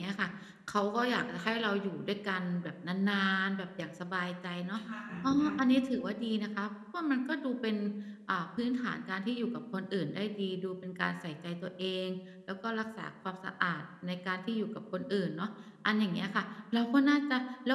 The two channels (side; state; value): both; identical; correlation 1.00